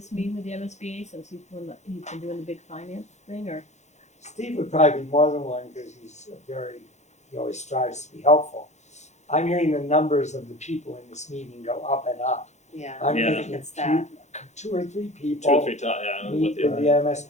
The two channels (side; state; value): right; late; 0.33 ms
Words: meeting with the MSBA, since he's been doing the big finance thing, or, Steve would probably be more than one, because he always strives to be helpful. I'm hearing the numbers of the people in this meeting go up and up. Yeah, I'm Yeah. I think thinking it's that. two or three Two or people three times, yeah, meet with with the, the